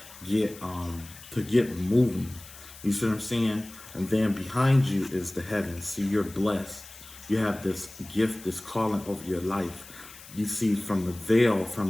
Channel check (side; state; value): left; noise; hiss, 18 dB below the sound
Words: get moving. You see what I'm saying? And then behind you is the heavens. See, you're blessed. You have this gift, this calling over your life. You see, from the veil,